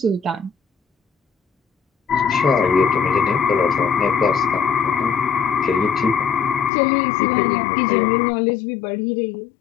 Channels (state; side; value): drops out; right; at 6.7 s